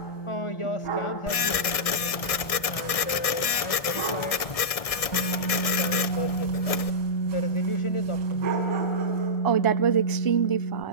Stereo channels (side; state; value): right; late; 1.6 ms